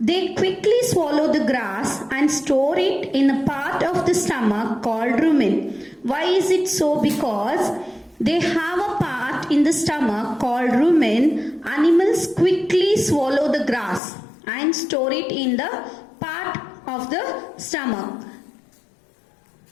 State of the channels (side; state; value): right; drops out; at 14.0 s